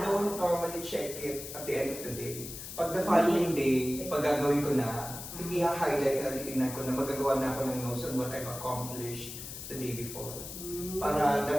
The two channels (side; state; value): left; noise; hiss, 10 dB below the sound